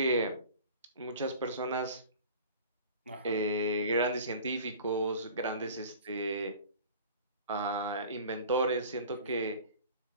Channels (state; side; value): inverted; both; correlation -0.42